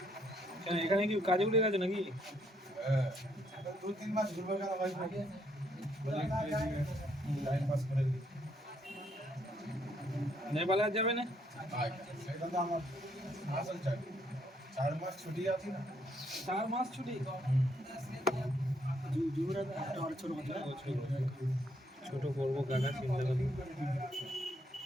এখানে কি কাজে উঠে গেছে নাকি? 2-3 মাস ঘুরবে কেন ভাই? টাইম পাস করে দিই। নেপালে আর যাবে না? সেটা তো আমার আসল চাকরি। 4 মাস ছুটি আছে না? 4 মাস ছুটি? ছোট করবো কাকা, চিন্তা করবো।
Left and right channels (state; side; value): normal; both; correlation 0.71